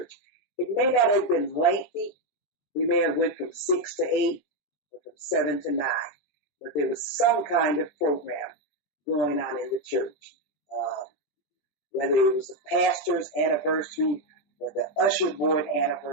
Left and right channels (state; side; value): late; right; 20 ms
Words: It may not have been lengthy. We may have went from 6 to 8 or from 7 to 9. But there was some kind of program going on in the church. Whether it was the pastor's anniversary or the usher board